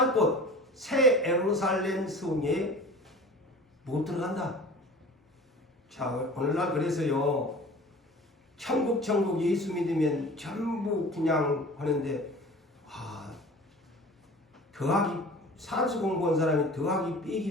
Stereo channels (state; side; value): normal; both; correlation 0.41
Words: 곳 새 예루살렘 성에 못 들어간다. 자, 오늘날 그래서요, 천국 예수 믿으면 전부 그냥 하는데, 더하기 산수 공부한 사람이 더하기